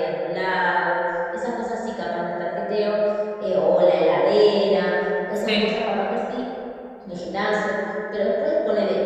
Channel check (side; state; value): both; identical; correlation 1.00